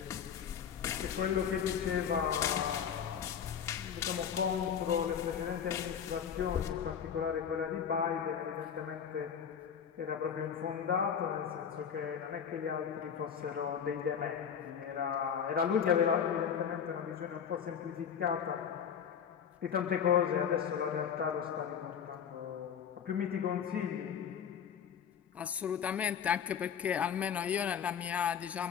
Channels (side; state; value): right; quieter; 7.9 dB